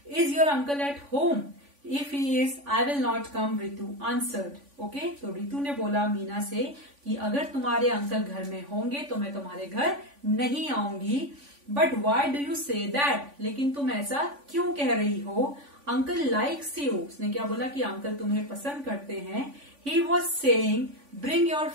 Is your uncle at home? If he is I will not come, Ritu answered. Okay, तो रितु ने बोला मीना से कि अगर तुम्हारे अंकल घर में होंगे तो मैं तुम्हारे घर नहीं आऊंगी। But why do you say that, लेकिन तुम ऐसा क्यों कह रही हो? अंकल लाइक्स यू, उसने क्या बोला कि अंकल तुम्हें पसंद करते हैं। He was saying bring your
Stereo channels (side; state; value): left; late; 3.5 ms